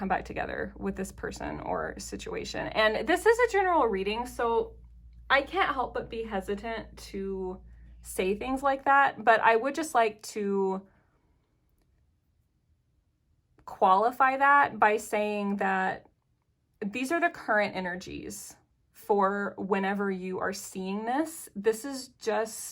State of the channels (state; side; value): identical; both; correlation 1.00